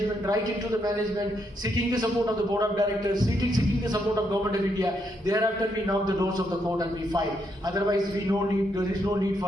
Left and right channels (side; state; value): both; normal; correlation 0.78